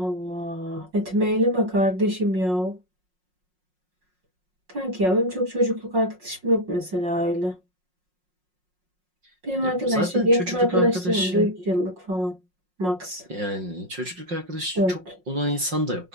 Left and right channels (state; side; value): late; left; 5.5 ms